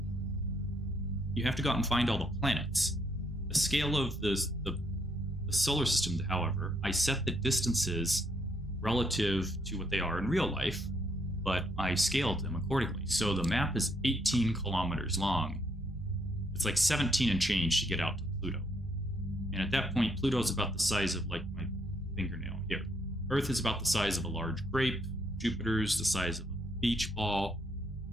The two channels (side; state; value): both; normal; correlation 0.73